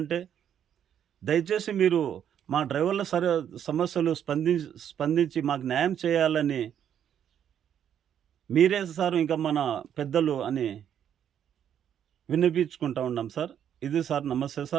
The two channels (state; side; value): quieter; left; 9.3 dB